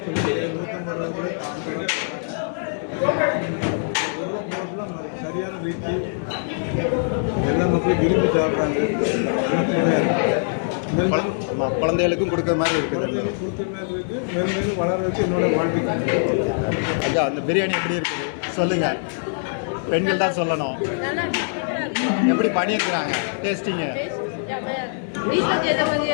சரியான ரீதி எல்லா மக்களும் விரும்பி சாப்பிட்றாங்க. குழந்தைகளுக்கும் கொடுக்குற மாதிரி இருக்குது. கொடுக்குற மாதிரி இருக்கு. மேலும் மேலும் வளர வச்சு என்னோட வாழ்க்கை. ஐயா அந்த பிரியாணி எப்படி இருக்குது சொல்லுங்க. பெண்கள் தான் சொல்லணும். எப்படி பண்ணியிருக்கிறாங்க டேஸ்டிங்க?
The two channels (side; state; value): right; silent; digital silence